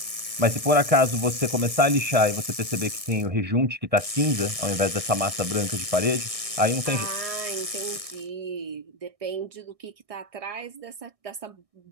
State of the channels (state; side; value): late; left; 1.6 ms